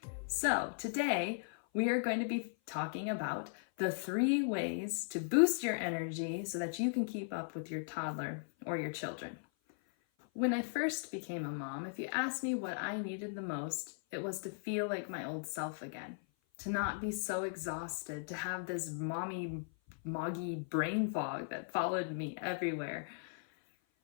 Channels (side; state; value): right; silent; 53 dB below the other